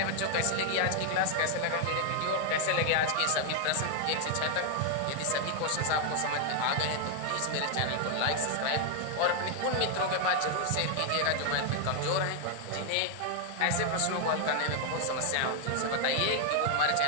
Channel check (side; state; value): both; different; correlation 0.00